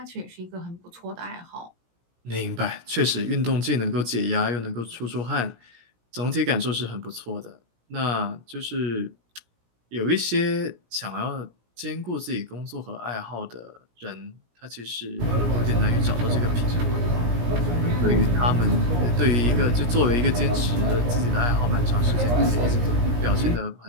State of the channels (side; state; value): left; late; 17 ms